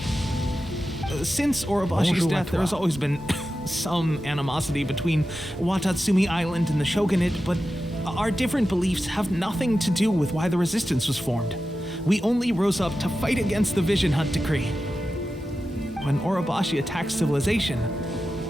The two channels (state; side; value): normal; both; correlation 0.92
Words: Since Orobashi's death, there has always been some animosity between Watatsumi Island and the Shogunate, but our different beliefs have nothing to do with why the resistance was formed. We only rose up to fight against the Vision Hunt Decree. When Orobashi attacked civilization,